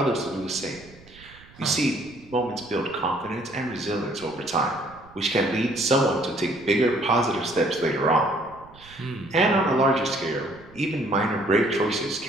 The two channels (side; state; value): right; noise; rumble, 24 dB below the sound